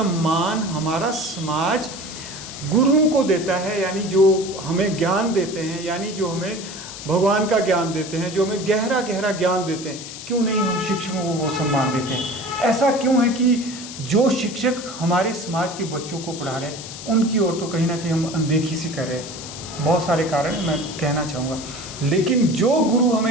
हमारा समाज गुरुओं को देता है, यानी जो हमें ज्ञान देते हैं, यानी जो हमें भगवान का ज्ञान देते हैं, जो हमें गहरा गहरा ज्ञान देते हैं, क्यों नहीं हम शिक्षकों को वो सम्मान देते हैं? ऐसा क्यों है कि जो शिक्षक हमारे समाज के बच्चों को पढ़ा रहे हैं उनकी ओर तो कहीं ना कहीं हम अनदेखी सी कर रहे हैं? बहुत सारे कारण मैं कहना चाहूँगा, लेकिन जो गुरु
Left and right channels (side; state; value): left; noise; hiss, 11 dB below the sound